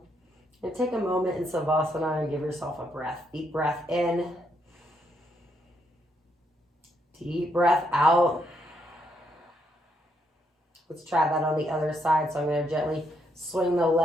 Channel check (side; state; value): both; normal; correlation 0.76